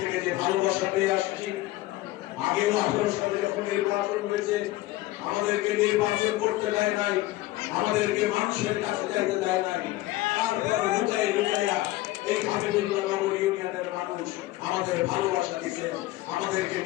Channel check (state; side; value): quieter; right; 17.4 dB